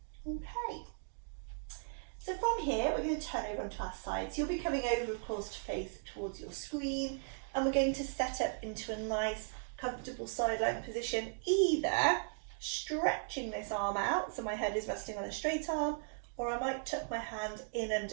Okay. So from here, we're going to turn over onto our sides. You'll be coming over, of course, to face towards your screen, and we're going to set up into a nice, comfortable sideline position, either stretching this arm out, so my head is resting on a straight arm, or I might tuck my hand in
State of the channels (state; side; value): silent; left; digital silence